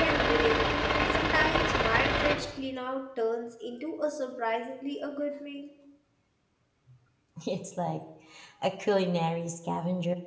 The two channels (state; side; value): identical; both; correlation 1.00